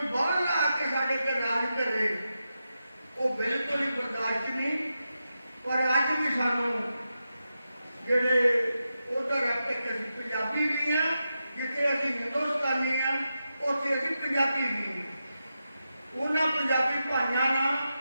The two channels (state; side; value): inverted; both; correlation -0.89